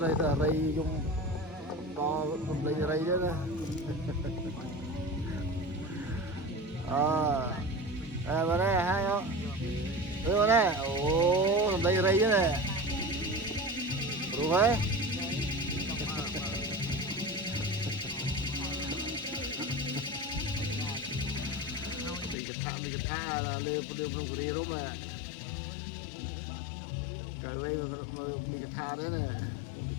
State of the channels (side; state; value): right; drops out; at 22.4 s